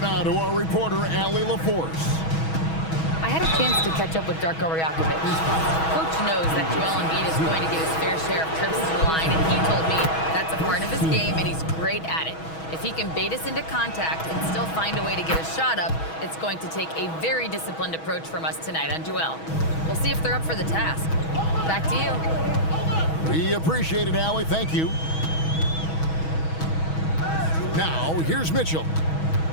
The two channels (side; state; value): right; late; 6.2 ms